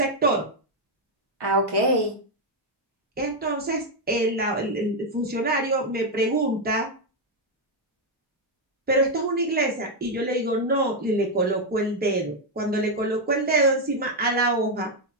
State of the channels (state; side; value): normal; both; correlation 0.02